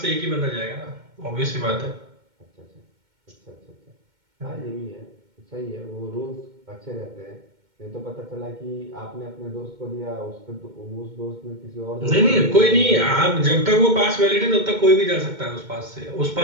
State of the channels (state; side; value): late; left; 2.2 ms